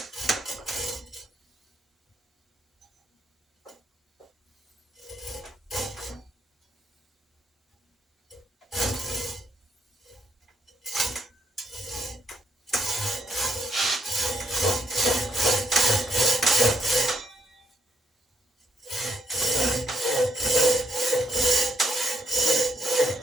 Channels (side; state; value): both; normal; correlation 0.74